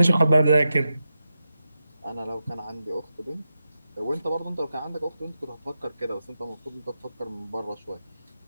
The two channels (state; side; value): inverted; both; correlation -0.89